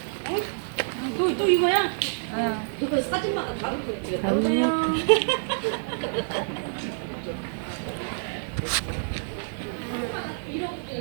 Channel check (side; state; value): left; silent; 60 dB below the other